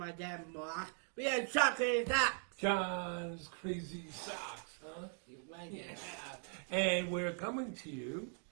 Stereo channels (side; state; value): left; silent; 51 dB below the other